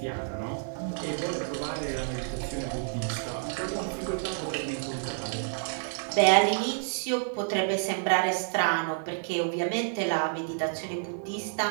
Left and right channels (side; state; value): left; silent; digital silence